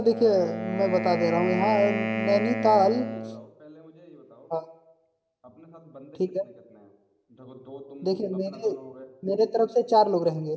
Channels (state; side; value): identical; both; correlation 1.00